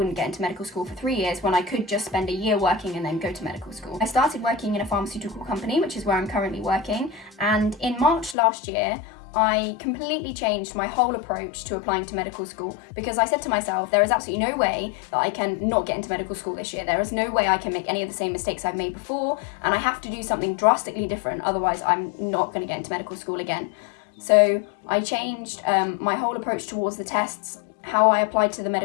get into medical school for 3 years when I could just spend a year working and then go to medical school. I started working in a pharmaceutical company, which is where I'm currently working, and in March last year I completely changed my whole approach to applying to medical school, because I said to myself, there is absolutely no way that I can not get into medical school this year. There is no way I can make any of the same mistakes I've made before, and I have to do something drastically different, otherwise I'm not going to get into medical school again. So I changed my whole approach towards the tests, how I applied to the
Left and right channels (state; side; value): drops out; right; at 8.3 s